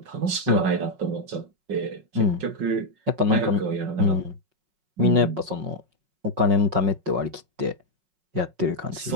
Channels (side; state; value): left; late; 5.4 ms